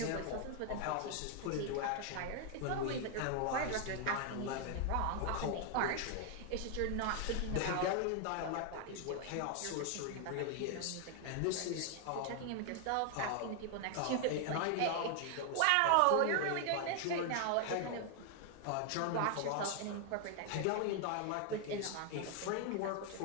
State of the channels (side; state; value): both; different; correlation 0.00